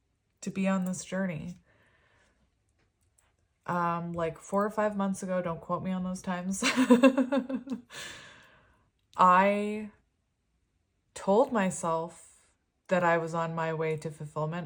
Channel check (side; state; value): both; identical; correlation 1.00